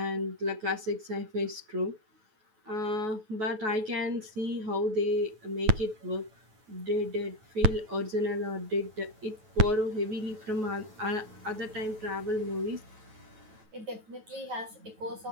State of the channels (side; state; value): left; late; 9.3 ms